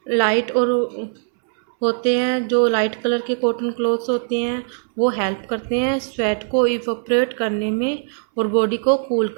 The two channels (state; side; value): silent; left; 65 dB below the other